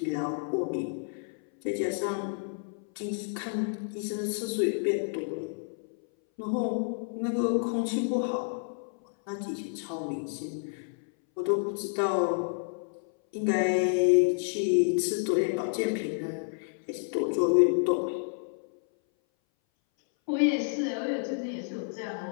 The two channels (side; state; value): right; silent; 58 dB below the other